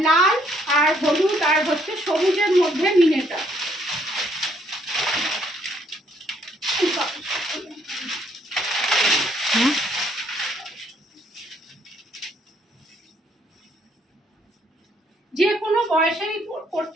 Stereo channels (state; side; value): normal; both; correlation 0.68